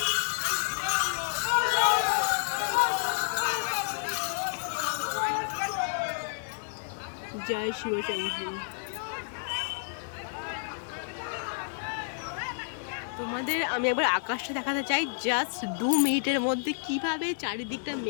জয় শিবশম্ভু। তোমাদের আমি একবার আকাশটা দেখাতে চাই, জাস্ট 2 মিনিটের মধ্যে কিভাবে চারিদিকটা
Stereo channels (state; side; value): silent; right; digital silence